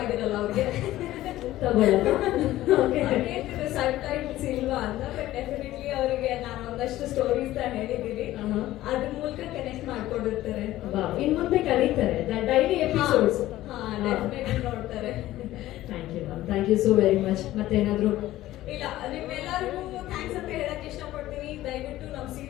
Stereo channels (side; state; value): right; quieter; 15.3 dB